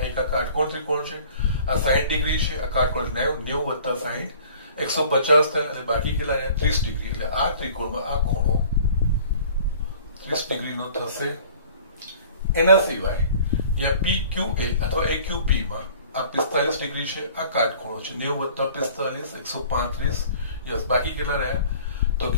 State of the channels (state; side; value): inverted; both; correlation -0.49